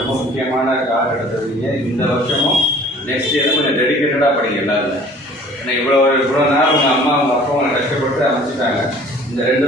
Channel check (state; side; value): normal; both; correlation 0.50